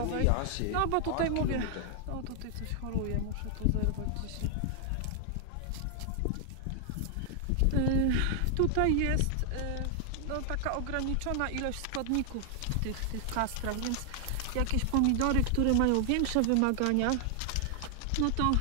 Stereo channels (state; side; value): different; both; correlation 0.00